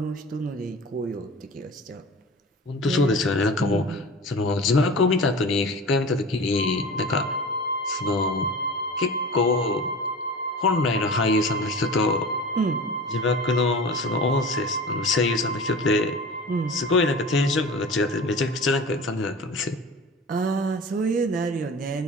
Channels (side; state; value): both; normal; correlation 0.35